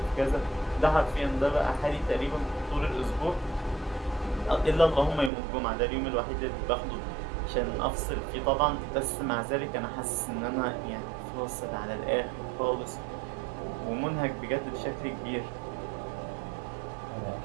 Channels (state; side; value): drops out; left; at 5.3 s